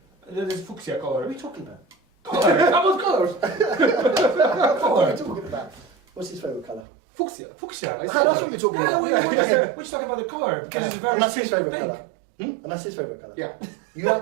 There's fuchsia What color. are we talking about? Color. about colors. What are we talking about? What's his favorite color? Fuchsia. Fuchsia. I Ah, that's what we're talking Yeah, about. we're just talking about the color because it's a very And that's his strict favorite pink. color. And that's his favorite color. Yeah. You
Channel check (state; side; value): drops out; left; at 6.9 s